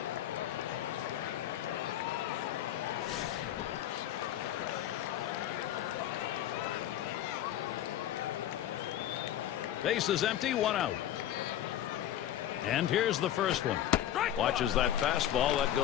Base is empty, 1 out. And here's the first one. Watches that fastball. That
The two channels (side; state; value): right; quieter; 11.7 dB